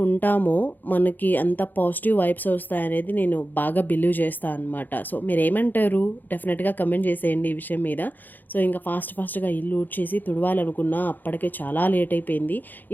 ఉంటామో, మనకి అంత పాజిటివ్ వైబ్స్ వస్తాయనేది నేను బాగా బిలీవ్ చేస్తా అనమాట. సో, మీరేమంటారు? డెఫినెట్‌గా కమెంట్ చేసేయండి ఈ విషయం మీద. సో, ఇంకా ఫాస్ట్‌గా ఇల్లు ఊడ్చేసి తుడవాలనుకున్నా, అప్పటికే చాలా లేట్ అయిపోయింది.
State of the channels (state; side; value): late; right; 0.087 ms